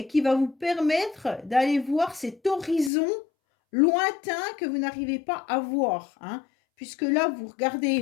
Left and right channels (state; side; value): drops out; right; at 2.9 s